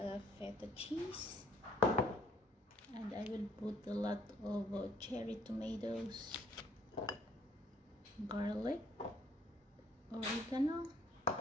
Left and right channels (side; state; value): both; normal; correlation 0.63